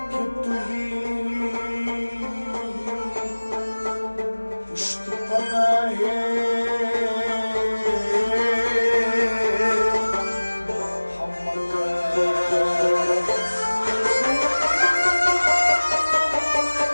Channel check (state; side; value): inverted; both; correlation -1.00